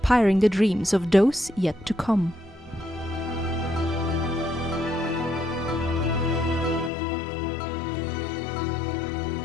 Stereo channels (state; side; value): drops out; right; at 6.9 s